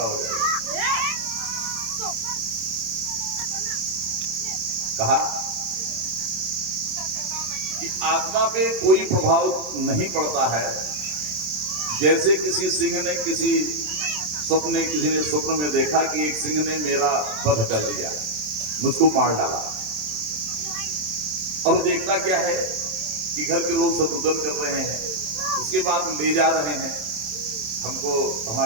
हो जाएगा। कहा कि आत्मा पे कोई प्रभाव नहीं पड़ता है। जैसे किसी सिंह ने किसी ने स्वप्न में देखा कि एक सिंह ने मेरा वध कर दिया, मुझको मार डाला, और देखता क्या है कि घर के लोग सब रुदन कर रहे हैं, उसके बाद ले जा रहे हैं, हमको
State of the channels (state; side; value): late; left; 27 ms